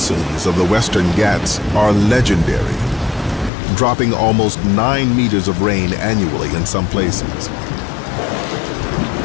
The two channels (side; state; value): right; drops out; at 3.5 s